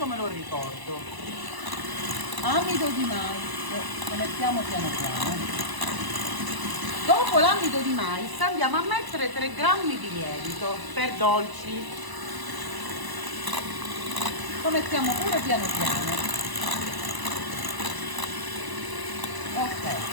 me lo ricordo. Amido di mais, lo mettiamo piano piano. Dopo l'amido di mais andiamo a mettere 3 grammi di lievito per dolci. Lo mettiamo pure piano piano.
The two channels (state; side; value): late; left; 1.0 ms